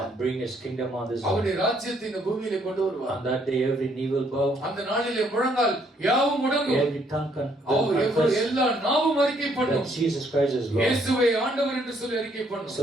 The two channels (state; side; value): normal; both; correlation 0.68